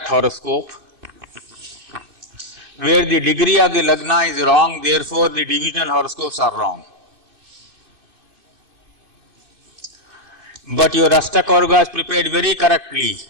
horoscope, where the degree of the Lagna is wrong, therefore the divisional horoscopes are wrong. But your Ashtakavarga is prepared very correctly.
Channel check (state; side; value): late; left; 2.8 ms